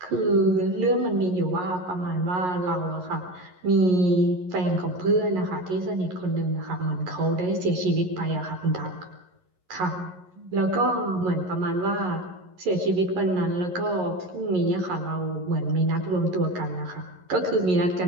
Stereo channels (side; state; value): left; late; 11 ms